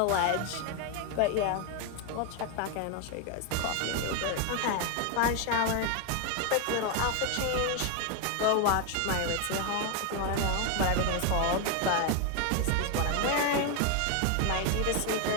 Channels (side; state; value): both; different; correlation 0.01